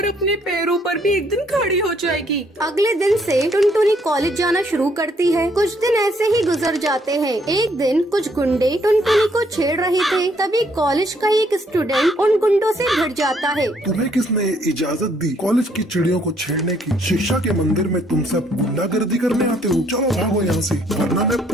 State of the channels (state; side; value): normal; both; correlation 0.68